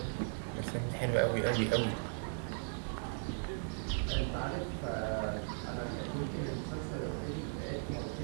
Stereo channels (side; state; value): left; silent; 53 dB below the other